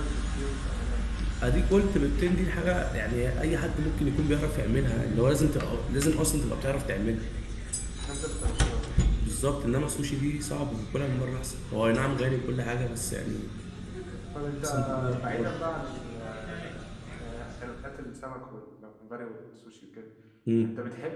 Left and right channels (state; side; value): identical; both; correlation 1.00